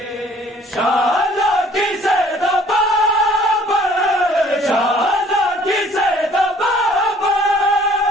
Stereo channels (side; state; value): both; normal; correlation 0.56